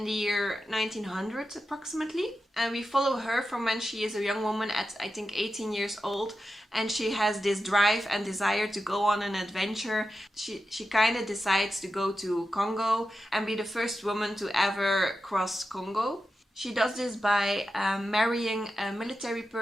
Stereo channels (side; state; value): both; normal; correlation 0.91